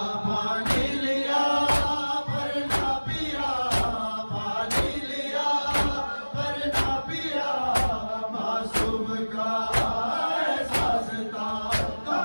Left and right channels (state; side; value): inverted; both; correlation -1.00